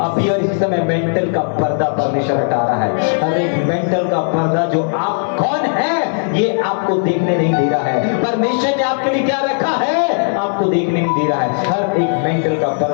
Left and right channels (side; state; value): right; silent; 62 dB below the other